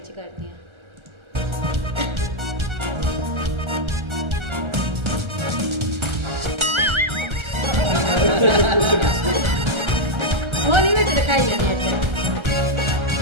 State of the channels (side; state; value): left; late; 1.3 ms